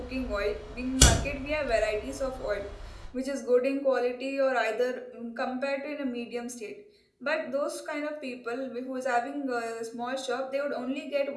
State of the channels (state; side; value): identical; both; correlation 1.00